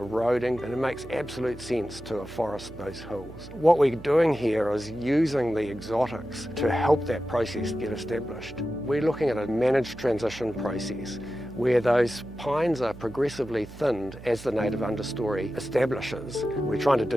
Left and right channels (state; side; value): noise; right; hum, 16 dB below the sound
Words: and it makes absolute sense to afforest those hills. What we're doing here is using the exotics to help that process get established. We're looking at a managed transition process where those pines are progressively thinned as the native understory establishes. We're trying to